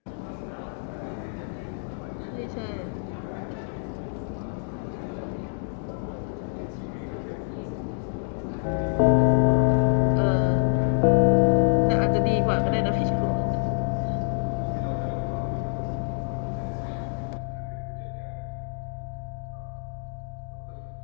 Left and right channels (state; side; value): silent; right; digital silence